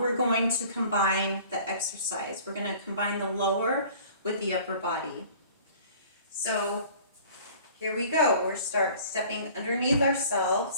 going to combine the exercise. We're going to combine the lower with the upper body. So here we go. We're stepping underneath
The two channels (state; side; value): inverted; both; correlation -0.48